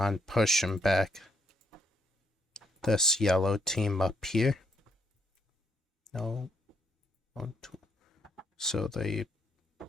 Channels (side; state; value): both; normal; correlation 0.74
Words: pushing back this yellow team up here. No. 1, 2. So they